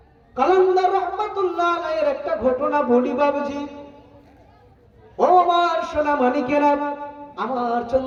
কালান্দার রহমাতুল্লাহ আলাইহির একটা ঘটনা বলি বাবুজি। ও আমার সোনা মানিকেরা, আমার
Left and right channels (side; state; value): both; identical; correlation 1.00